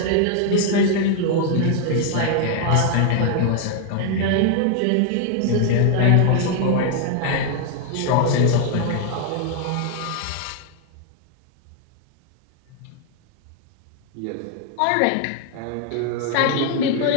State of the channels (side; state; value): both; different; correlation 0.00